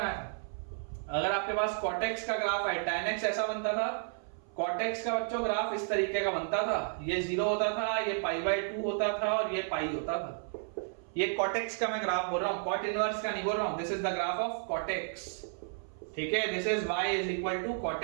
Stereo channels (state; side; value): silent; left; 55 dB below the other